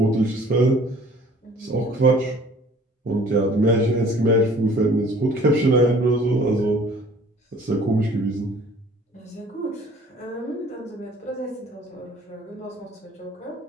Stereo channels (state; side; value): normal; both; correlation 0.52